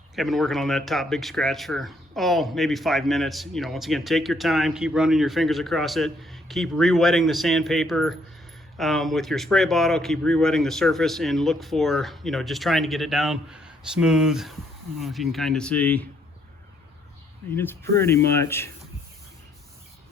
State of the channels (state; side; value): normal; both; correlation 0.69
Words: I've been working on that top big scratch for, maybe 5 minutes. You know, once again, take your time, keep running your fingers across it, keep re-wetting the sandpaper with your spray bottle, keep re-wetting the surface, and look for, you know, just trying to get it down smooth. I don't know if you can kind of see. I mean, it's pretty much